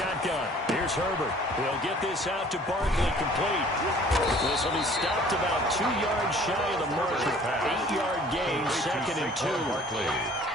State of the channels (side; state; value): both; normal; correlation 0.52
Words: here's Herbert. He'll get this out to Barkley, complete. This will be stopped about 2 yards shy of the mark. 8-yard gain, 2nd and 2.